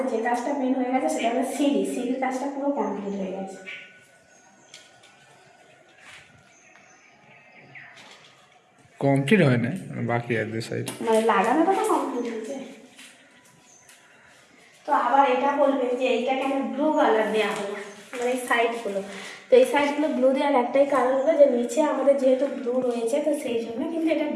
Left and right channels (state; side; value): identical; both; correlation 1.00